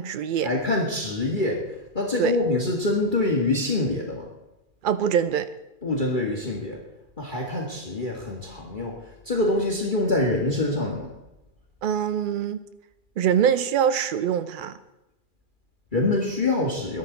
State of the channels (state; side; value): late; left; 2.4 ms